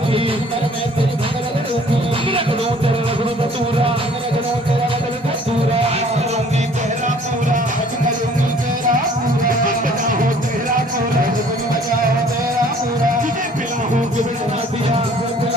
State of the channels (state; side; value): normal; both; correlation 0.55